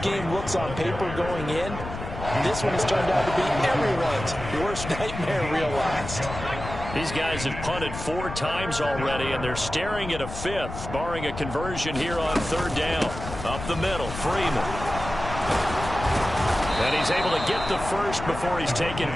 game looks on paper going in. This one has turned out to be everyone's worst nightmare realized. These guys have punted 4 times already, and they're staring at a 5th, barring a conversion here on 3rd down. Up the middle, Freeman. And he's able to get the first before he's taken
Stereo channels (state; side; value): noise; left; rumble, 9 dB below the sound